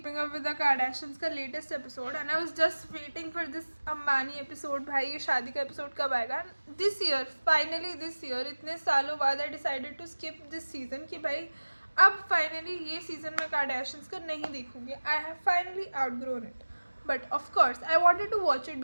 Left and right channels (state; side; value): inverted; both; correlation -1.00